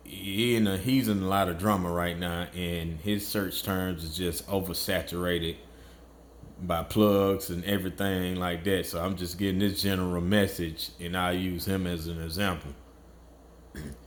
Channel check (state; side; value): identical; both; correlation 1.00